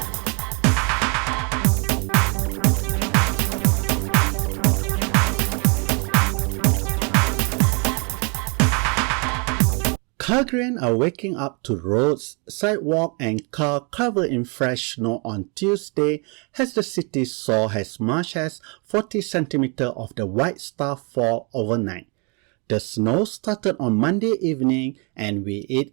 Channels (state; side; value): quieter; left; 33.7 dB